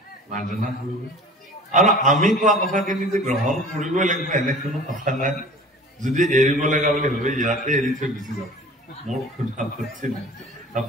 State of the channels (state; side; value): normal; both; correlation 0.43